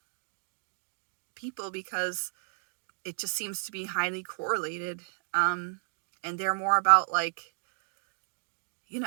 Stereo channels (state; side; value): silent; left; digital silence